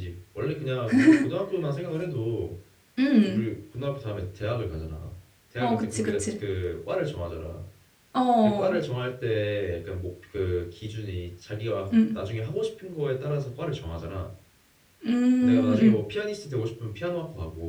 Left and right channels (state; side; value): identical; both; correlation 1.00